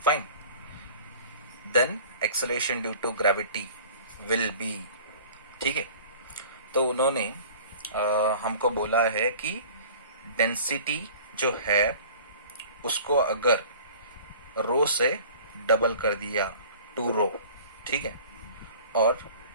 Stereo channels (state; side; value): inverted; both; correlation -0.46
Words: fine, then acceleration due to gravity will be. ठीक है, तो उन्होंने हमको बोला है कि density जो है उसको अगर रो से डबल कर दिया 2 रो, ठीक है, और